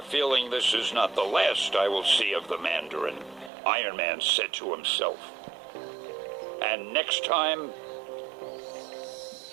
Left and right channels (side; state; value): left; drops out; at 3.5 s